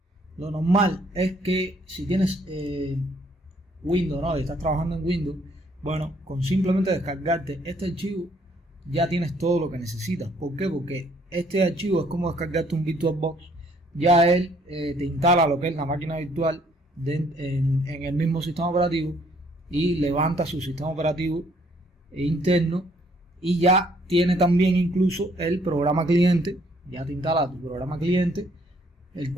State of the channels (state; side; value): normal; both; correlation 0.64